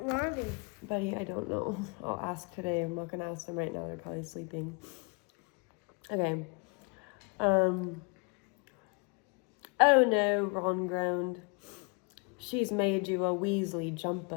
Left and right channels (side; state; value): right; quieter; 33.6 dB